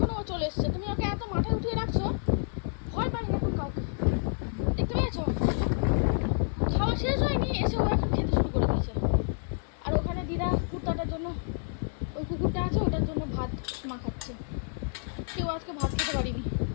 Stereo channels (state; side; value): silent; right; digital silence